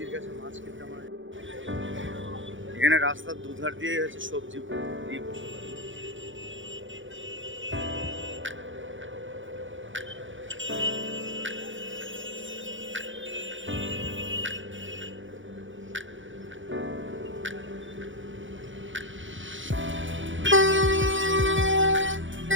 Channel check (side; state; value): left; late; 0.56 ms